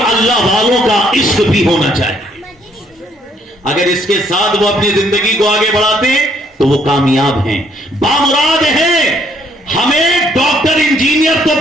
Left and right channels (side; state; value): both; normal; correlation 0.67